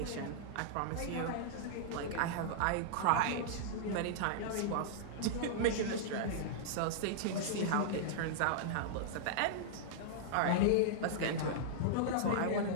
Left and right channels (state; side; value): different; both; correlation -0.02